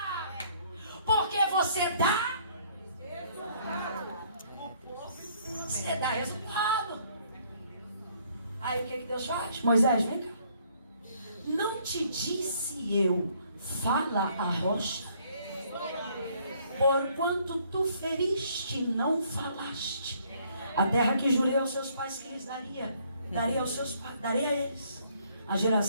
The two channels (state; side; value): inverted; both; correlation -0.64